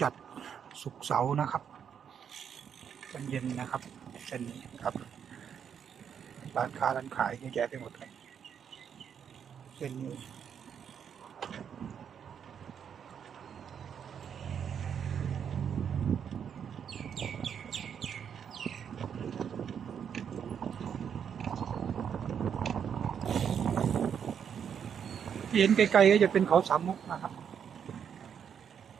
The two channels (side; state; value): left; quieter; 7.9 dB